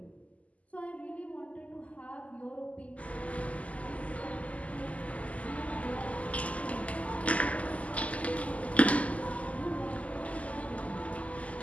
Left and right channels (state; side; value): late; right; 0.069 ms